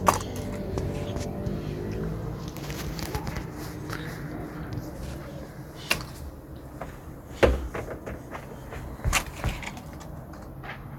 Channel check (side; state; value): both; identical; correlation 1.00